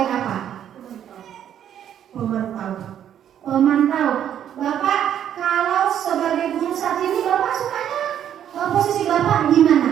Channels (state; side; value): quieter; left; 9.9 dB